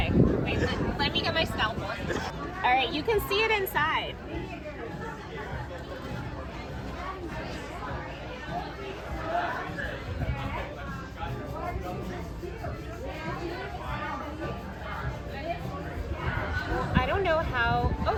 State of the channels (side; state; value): both; identical; correlation 1.00